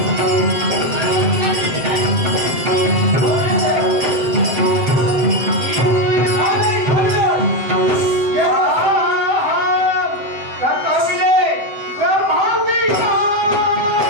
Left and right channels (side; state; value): left; late; 7.8 ms